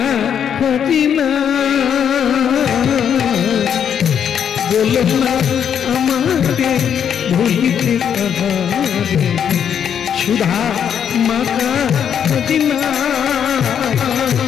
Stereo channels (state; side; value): quieter; right; 8.4 dB